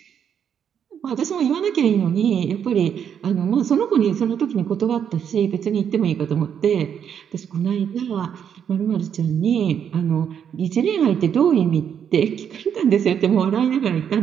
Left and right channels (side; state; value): left; quieter; 8.3 dB